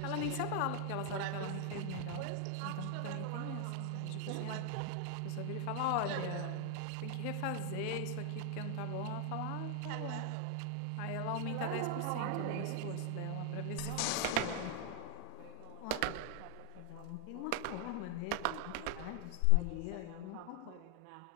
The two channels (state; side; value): different; both; correlation 0.00